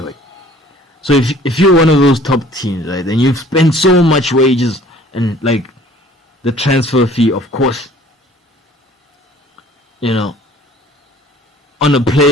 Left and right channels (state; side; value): normal; both; correlation 0.52